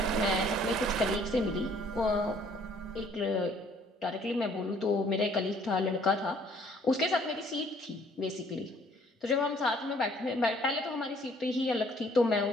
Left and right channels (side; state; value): both; normal; correlation 0.60